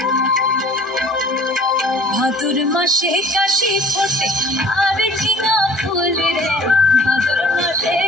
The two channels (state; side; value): normal; both; correlation 0.49